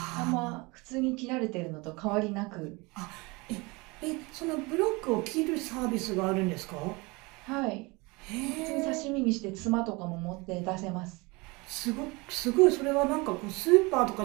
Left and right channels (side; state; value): left; quieter; 25.7 dB